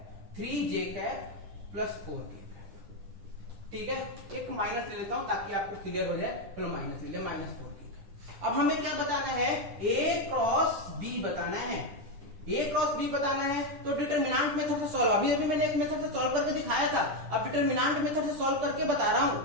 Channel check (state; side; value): late; left; 10 ms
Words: 3j cap plus 4k cap, ठीक है। एक माइनस ले लेता हूं ताकि आपको क्लियर हो जाए, चलो माइनस ले लिया, माइनस 4k। अब हमें क्या बताना है, a क्रॉस b बताना है, a क्रॉस b बताना है। तो डिटरमिनेंट मेथड से सॉल्व, अभी मैंने एक मेथड से सॉल्व करके दिखाया था, अब डिटरमिनेंट मेथड से सॉल्व करके बता रहा हूं।